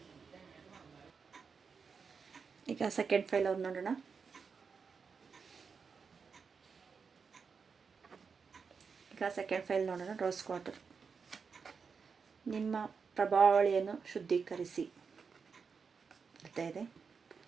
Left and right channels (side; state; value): left; quieter; 5.6 dB